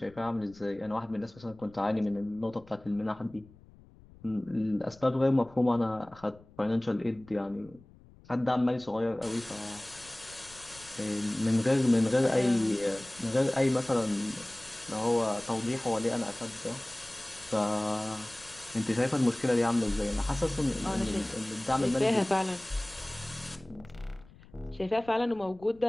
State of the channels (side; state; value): left; noise; rumble, 24 dB below the sound